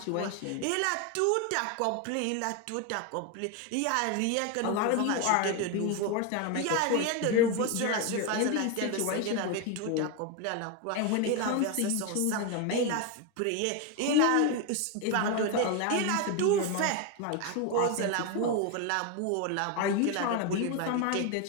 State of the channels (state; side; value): different; both; correlation 0.02